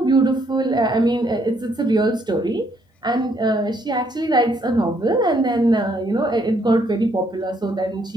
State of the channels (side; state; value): both; normal; correlation 0.70